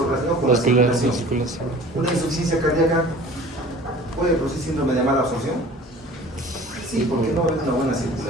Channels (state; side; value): normal; both; correlation 0.45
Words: relacionado con la circulación. Una insuficiencia cardíaca puede producir síndrome de mala absorción. Sí, porque no va a haber una buena